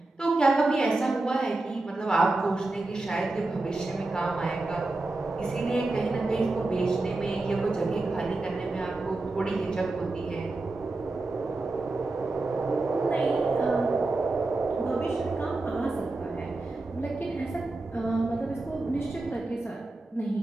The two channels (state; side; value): quieter; left; 3.1 dB